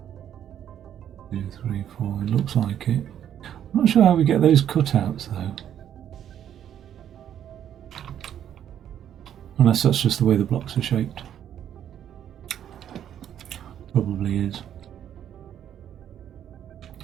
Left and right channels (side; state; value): left; quieter; 10.0 dB